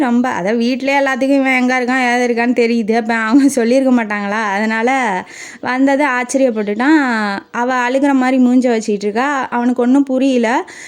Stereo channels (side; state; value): both; identical; correlation 1.00